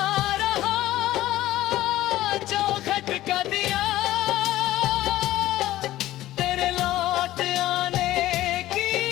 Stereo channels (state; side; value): quieter; right; 15.1 dB